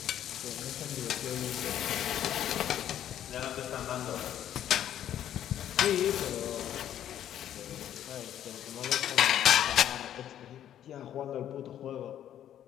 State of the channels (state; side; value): quieter; right; 10.9 dB